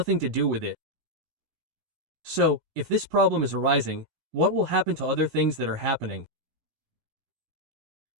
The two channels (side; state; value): left; late; 17 ms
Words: to do with it. So, if this problem is arising, what will happen to other things that are happening?